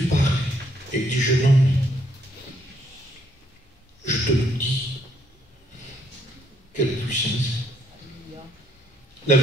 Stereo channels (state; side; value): normal; both; correlation 0.70